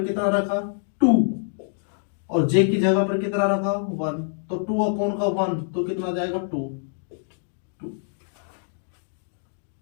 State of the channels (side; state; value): right; silent; digital silence